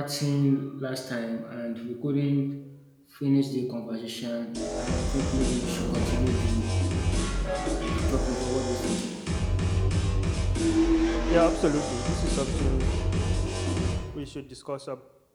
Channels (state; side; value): identical; both; correlation 1.00